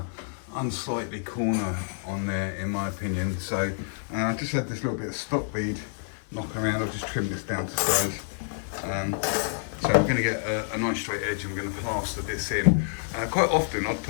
unsightly corner on there in my opinion. So I just had this little bit of stock bead knocking around. I'll just trim this down to size. So we're going to get a nice straight edge and we're going to plaster this in. Quite often I'd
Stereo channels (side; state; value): right; silent; 59 dB below the other